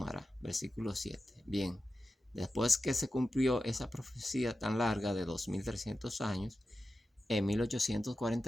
Versículo 7. Bien, después que se cumplió esa profecía tan larga de 2300 años, en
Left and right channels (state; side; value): normal; both; correlation 0.92